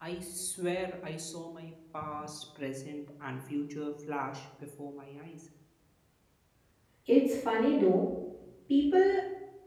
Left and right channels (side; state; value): both; identical; correlation 1.00